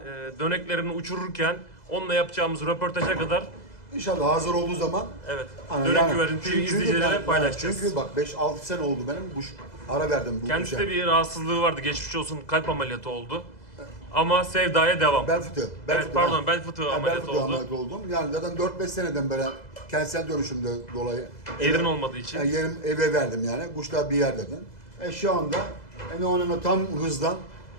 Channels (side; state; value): right; late; 2.0 ms